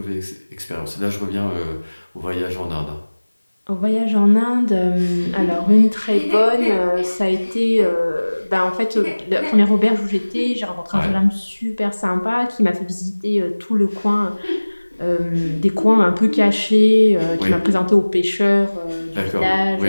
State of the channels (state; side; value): inverted; both; correlation -1.00